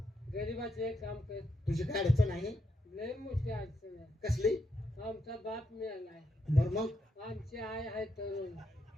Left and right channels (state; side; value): normal; both; correlation 0.81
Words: गरीबाचे काम कर तुझी काय अडचण आहे लय मोठी अडचण आहे कसली आमचा बाप मिळालाय बर मग आमची आई आहे तरुण